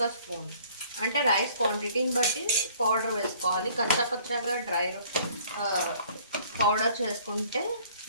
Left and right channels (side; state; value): both; inverted; correlation -0.56